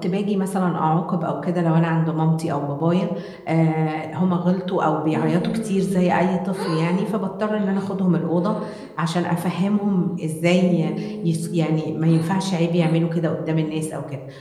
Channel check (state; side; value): identical; both; correlation 1.00